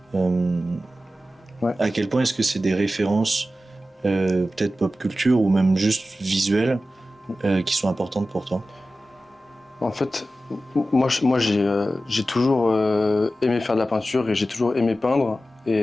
Ouais. À quel point est-ce que c'est des références peut-être pop culture ou même juste visuelles qui sont importantes pour toi? En fait, moi j'ai toujours aimé faire de la peinture et j'ai toujours aimé peindre.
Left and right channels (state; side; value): normal; both; correlation 0.94